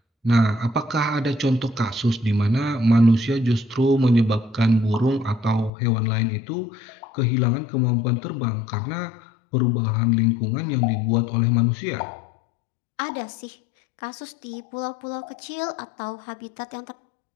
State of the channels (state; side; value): drops out; right; at 5.7 s